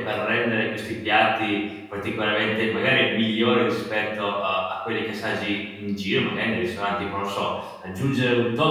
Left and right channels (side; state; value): both; identical; correlation 1.00